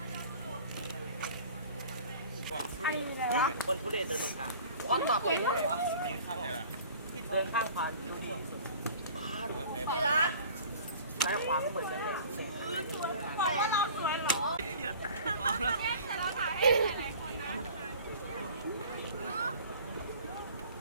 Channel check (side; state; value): both; inverted; correlation -0.46